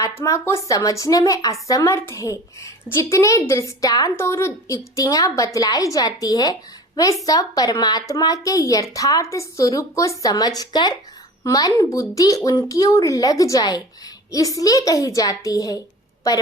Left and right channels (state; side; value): normal; both; correlation 0.39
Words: को समझने में असमर्थ है। जितने दृष्टांत और युक्तियां बतलाई जाती है वे सब परमात्मा के यथार्थ स्वरूप को समझकर मन बुद्धि उनकी ओर लग जाए इसलिए कही जाती है।